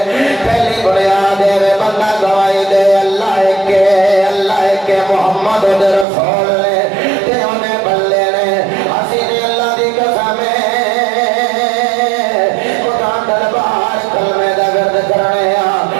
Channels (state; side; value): drops out; left; at 6.1 s